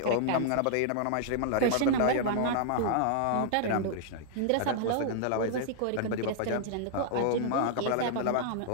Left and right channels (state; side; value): different; both; correlation -0.01